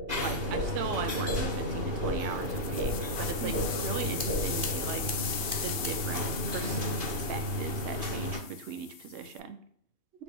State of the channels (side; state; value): left; late; 2.8 ms